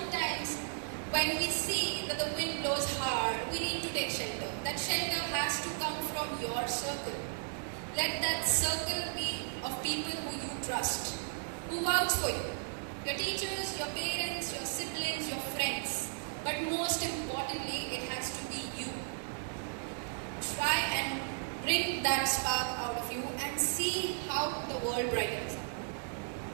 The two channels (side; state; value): left; silent; digital silence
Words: when we see that the wind blows hard, we need to take shelter. That shelter has to come from your circle. Let that circle be of people who you trust, who vouch for you. Your teachers, your parents, your siblings, your friends. But most importantly, it has to be you. Try and bring that spark out of you and see how the world brightens.